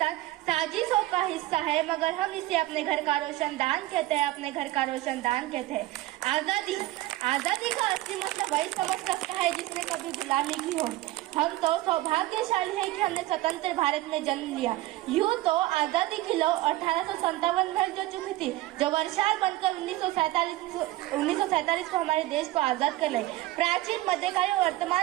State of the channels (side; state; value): left; quieter; 17.1 dB